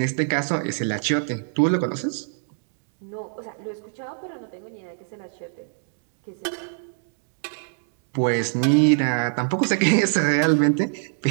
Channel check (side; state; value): left; silent; 62 dB below the other